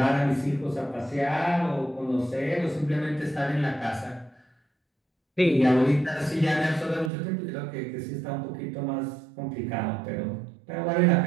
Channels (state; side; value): drops out; left; at 7.1 s